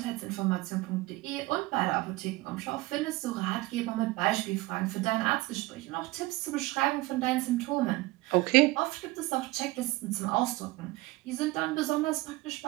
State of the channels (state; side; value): quieter; left; 20.6 dB